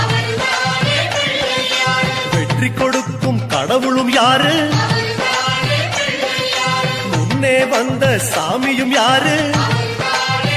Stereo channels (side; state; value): both; identical; correlation 1.00